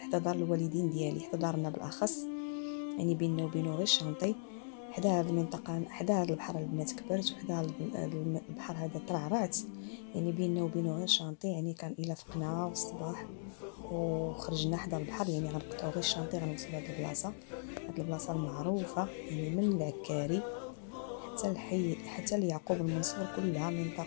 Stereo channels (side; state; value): right; silent; digital silence